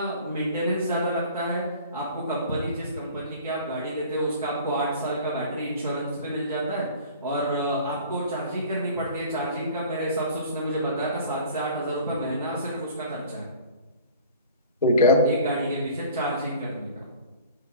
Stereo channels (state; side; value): inverted; both; correlation -0.45